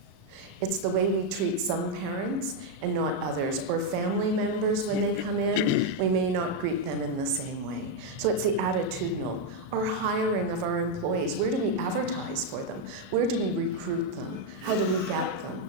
It's the way we treat some parents and not others, or family members when they come in, we may not greet them in the same way. So it's the attitudinal. Our hiring of our employees, where do we advertise for them? Where do we recruit them? How do we get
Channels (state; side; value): late; left; 37 ms